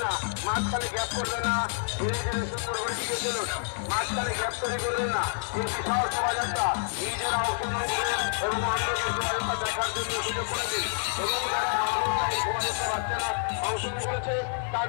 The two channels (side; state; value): right; silent; 59 dB below the other